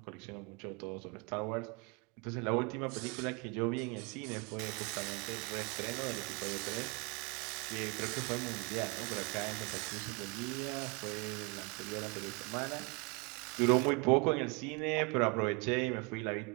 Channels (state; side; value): quieter; left; 30.8 dB